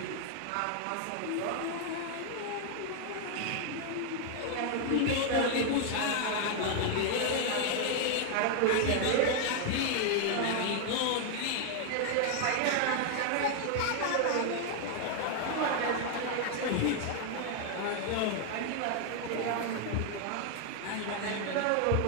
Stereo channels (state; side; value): different; both; correlation 0.00